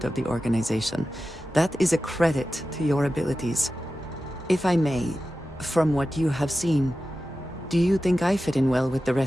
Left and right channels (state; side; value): normal; both; correlation 0.94